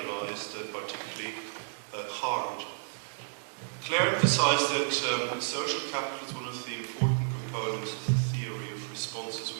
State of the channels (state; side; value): silent; left; digital silence